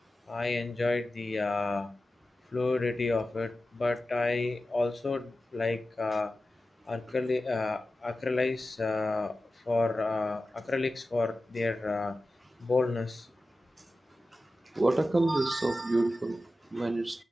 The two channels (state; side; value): normal; both; correlation 0.94